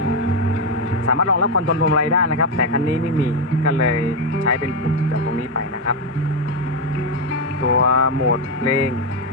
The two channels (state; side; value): normal; both; correlation 0.05